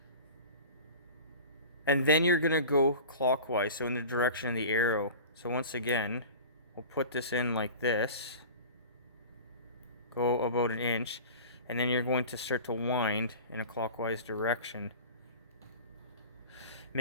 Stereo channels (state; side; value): inverted; both; correlation -0.37